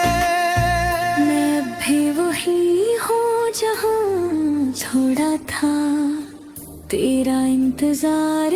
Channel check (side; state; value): both; identical; correlation 1.00